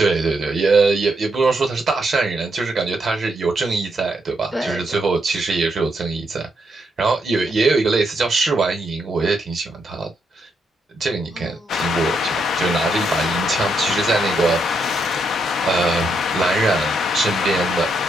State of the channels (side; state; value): both; normal; correlation 0.79